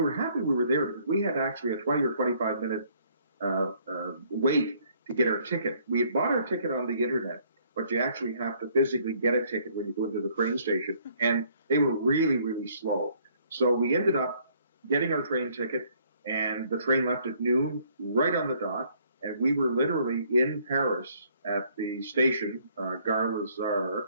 were happy we were there because we had actually a 20 or 25 minute wait to get our ticket. We had bought our ticket on the internet, but you actually have to physically get a ticket when you go into the train station, and they were really, really slow. So we ended up getting our train ticket, and the train left at noon, right on the dot, and we were literally in Paris at the station, Gare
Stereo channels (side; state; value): both; inverted; correlation -0.63